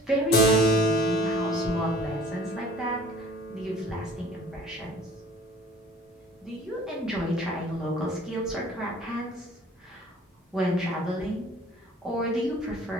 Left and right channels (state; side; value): normal; both; correlation 0.49